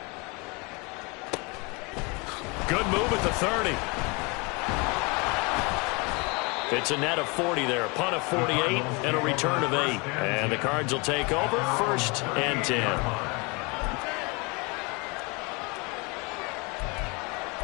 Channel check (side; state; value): right; quieter; 29.0 dB